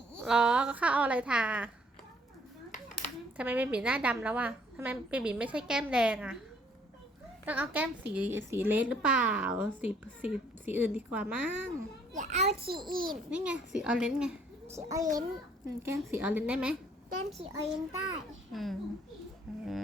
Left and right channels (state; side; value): normal; both; correlation 0.62